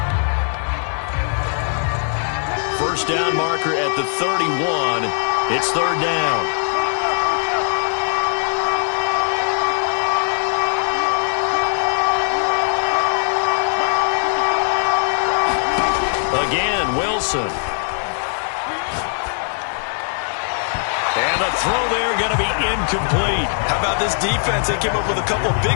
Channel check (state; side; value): silent; right; 66 dB below the other